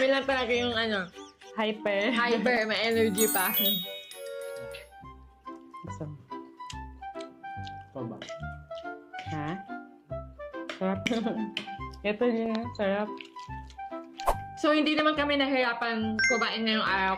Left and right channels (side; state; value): both; identical; correlation 1.00